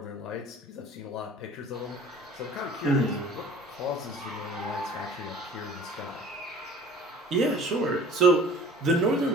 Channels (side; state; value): both; normal; correlation 0.46